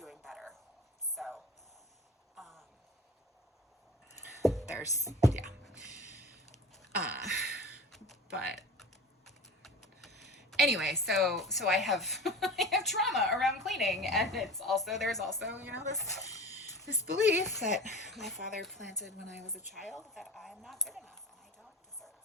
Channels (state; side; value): normal; both; correlation 0.36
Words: better. So there's but anyway, so I have I have trauma around cleaning, and there's also this belief that my father planted when I was a child, that I'm not good enough and I don't deserve